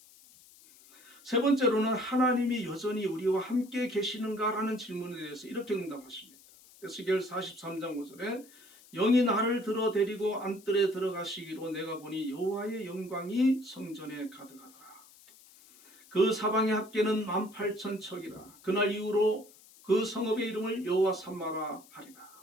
세 번째로는 하나님이 여전히 우리와 함께 계시는가라는 질문에 대해서 이렇게 응답하십니다. 에스겔 43장 5절에 영이 나를 들어 데리고 안뜰에 들어가시기로 내가 보니 여호와의 영광이 성전에 가득하더라. 그 사방의 합계는 18,000척이라. 그날 이후로 그 성읍의 이름을 여호와 삼마라 하리라.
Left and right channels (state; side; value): noise; left; hiss, 24 dB below the sound